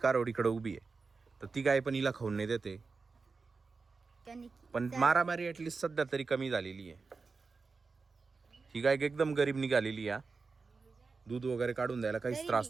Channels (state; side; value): quieter; left; 4.4 dB